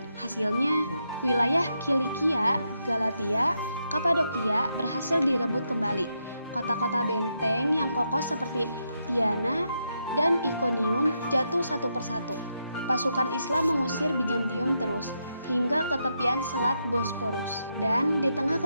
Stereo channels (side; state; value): both; inverted; correlation -0.82